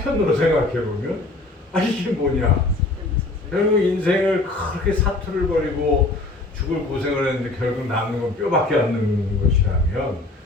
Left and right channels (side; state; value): right; quieter; 3.0 dB